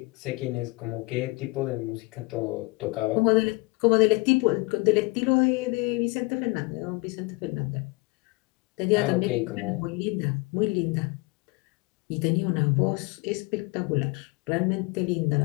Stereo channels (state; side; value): quieter; right; 25.8 dB